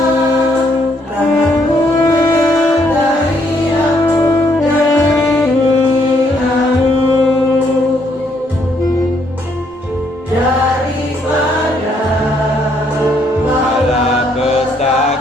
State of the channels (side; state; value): both; normal; correlation 0.71